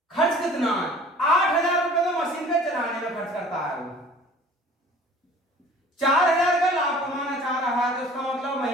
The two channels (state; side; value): normal; both; correlation 0.48